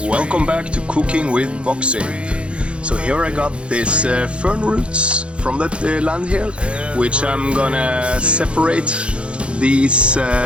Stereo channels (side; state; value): left; late; 0.058 ms